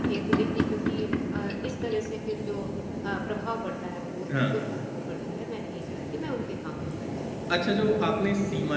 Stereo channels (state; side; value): identical; both; correlation 1.00